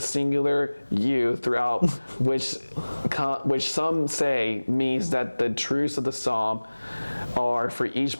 you throughout, which some say means that the truths of the psalm are for each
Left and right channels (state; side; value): inverted; both; correlation -1.00